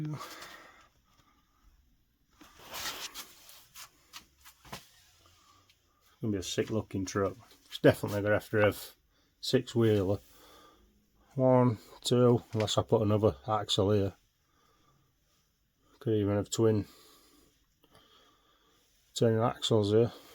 Gonna be a sick looking truck. It's definitely gonna have to have 6-wheeler. 1, 2, unless I put another axle here. Could even have twin axles here.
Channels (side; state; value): both; identical; correlation 1.00